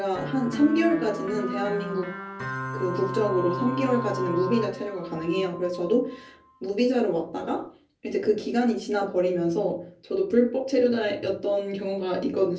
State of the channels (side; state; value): both; identical; correlation 1.00